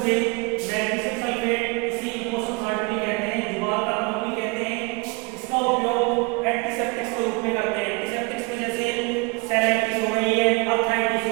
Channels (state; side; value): quieter; left; 29.5 dB